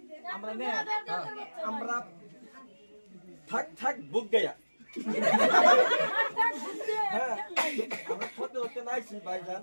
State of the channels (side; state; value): both; inverted; correlation -1.00